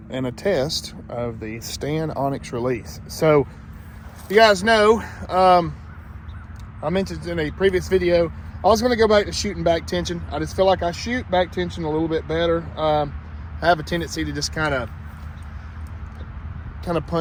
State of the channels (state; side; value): identical; both; correlation 1.00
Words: and a test of the STAN Onex release. So, you guys know, I mentioned in a previous video, I was going to go back to shooting back tension. I just feel like I shoot back tension a little bit better. I have a tendency to just kind of